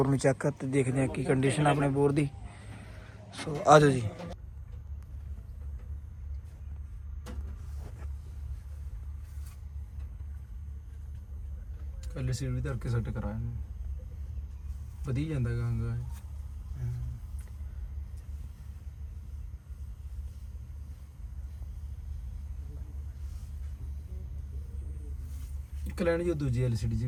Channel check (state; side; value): identical; both; correlation 1.00